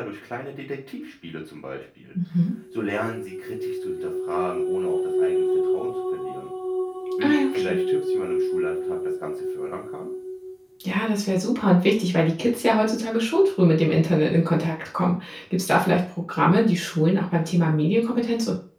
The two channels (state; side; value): identical; both; correlation 1.00